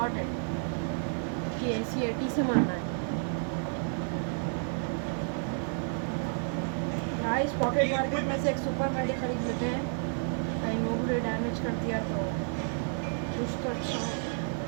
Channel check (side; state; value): left; silent; 57 dB below the other